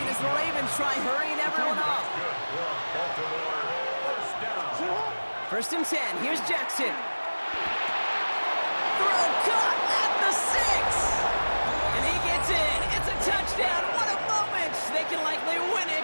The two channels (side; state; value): both; inverted; correlation -1.00